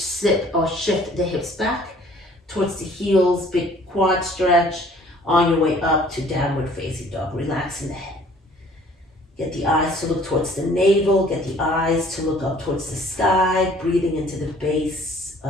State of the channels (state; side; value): normal; both; correlation 0.55